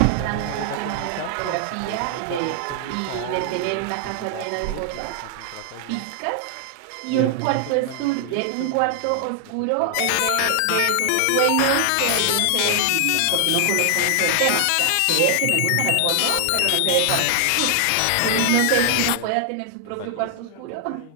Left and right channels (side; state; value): both; different; correlation 0.00